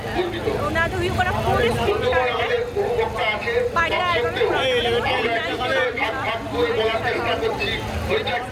তো ওনাদের হুই করা পুলিশ আমাদের উপভোক্তা আছে ভাগ করে বলার চেষ্টা করছি ওইটা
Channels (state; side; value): identical; both; correlation 1.00